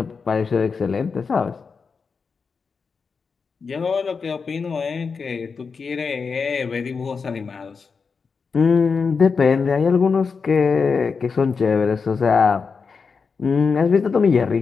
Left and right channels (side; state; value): right; quieter; 5.2 dB